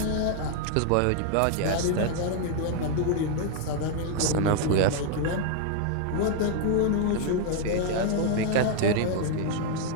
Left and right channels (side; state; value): both; different; correlation 0.00